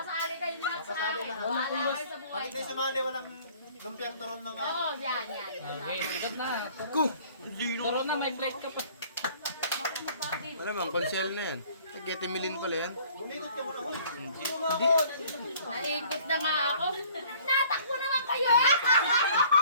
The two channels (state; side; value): inverted; both; correlation -0.54